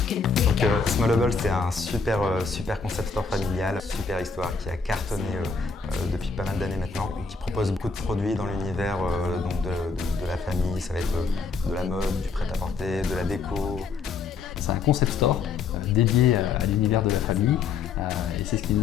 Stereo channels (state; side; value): quieter; right; 5.0 dB